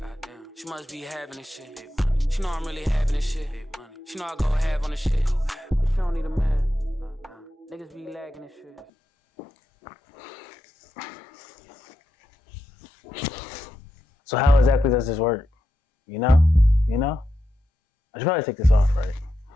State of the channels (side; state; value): both; normal; correlation 0.87